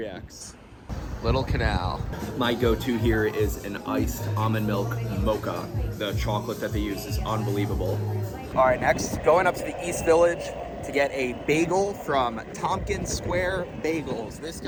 Little Canal. My go-to here is an iced almond milk mocha. The chocolate that they use is unbelievable. All right, next, going up to the East Village to get a bagel from Tompkins Square Bagels. This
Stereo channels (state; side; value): identical; both; correlation 1.00